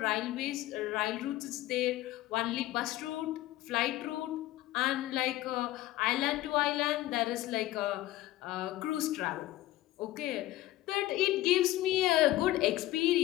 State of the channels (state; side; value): quieter; right; 15.9 dB